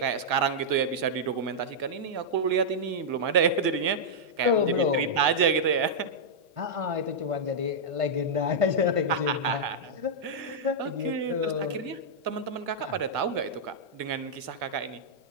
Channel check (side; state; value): left; late; 2.0 ms